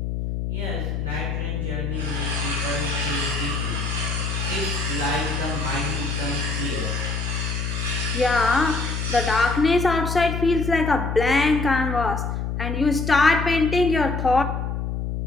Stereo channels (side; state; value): left; noise; hum, 2 dB below the sound